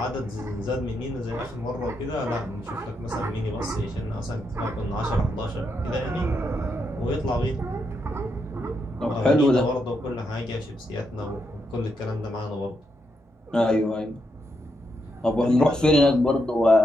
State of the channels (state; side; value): normal; both; correlation 0.81